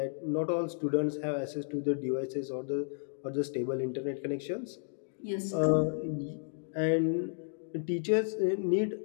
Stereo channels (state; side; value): silent; right; digital silence